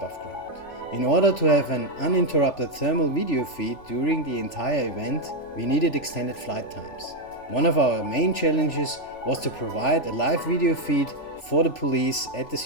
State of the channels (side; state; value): right; late; 3.4 ms